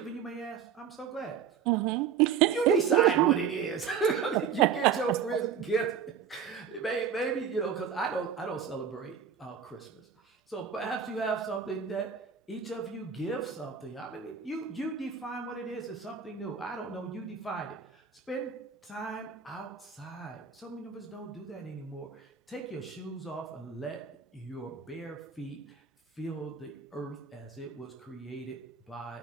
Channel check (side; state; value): left; quieter; 7.3 dB